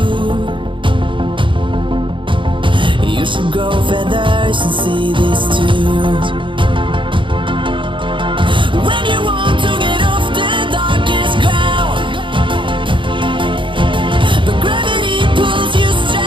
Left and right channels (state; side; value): late; left; 0.24 ms